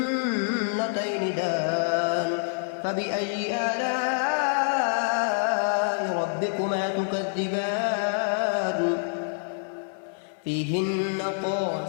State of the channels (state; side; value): silent; right; 60 dB below the other